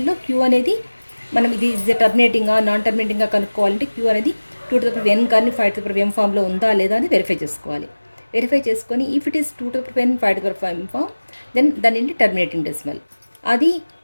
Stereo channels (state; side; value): inverted; both; correlation -1.00